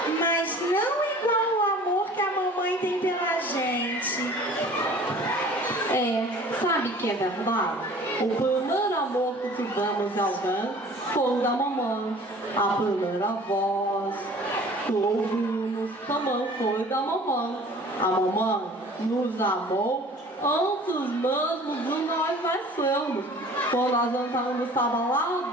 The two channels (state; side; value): normal; both; correlation 0.47